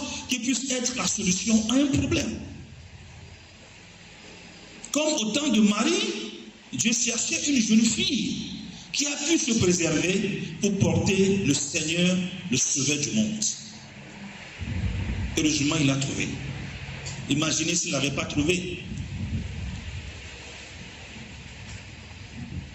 qui puisse être la solution à un problème. Comme au temps de Marie, Dieu cherchait une jeune fille qui a pu se préserver pour porter le Seigneur, le Sauveur du monde. Heureusement, il l'a trouvé. Imaginez s'il ne l'avait pas trouvé.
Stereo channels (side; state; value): both; identical; correlation 1.00